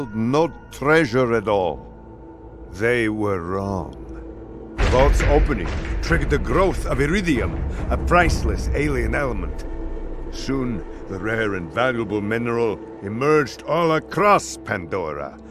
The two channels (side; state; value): both; identical; correlation 1.00